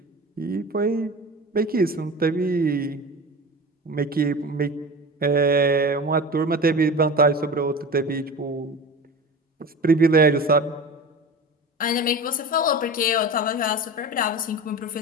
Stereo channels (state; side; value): normal; both; correlation 0.32